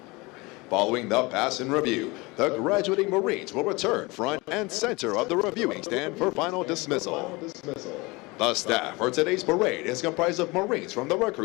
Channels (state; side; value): quieter; right; 24.5 dB